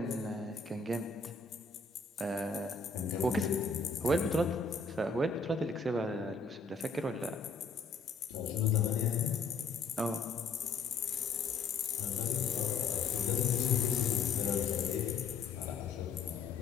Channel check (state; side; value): quieter; right; 4.5 dB